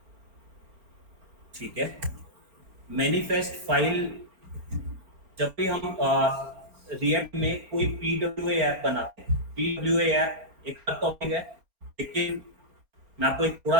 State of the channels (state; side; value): late; left; 4.3 ms